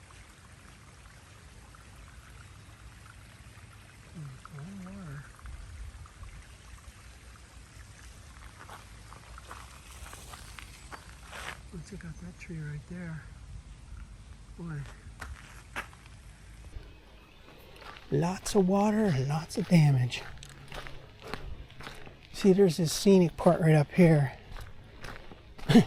Oh, check out that tree right there. Boy. Lots of water and lots of damage. See, there's this scenic part right up here.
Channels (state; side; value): identical; both; correlation 1.00